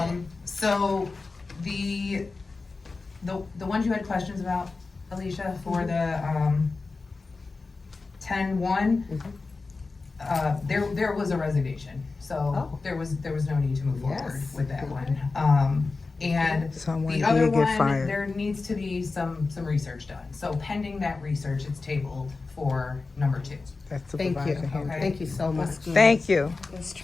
in. So the ones you had questions about, Alicia, for the 10-1, there was a resignation, so there was no need to move forward with that one. And Someone the other did get one, fired. there needs to be some research done. So pending that research, it's tabled for number 2. That's Thank you. Supervisor Henry. Thank you so much. Thank you.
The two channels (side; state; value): right; quieter; 3.9 dB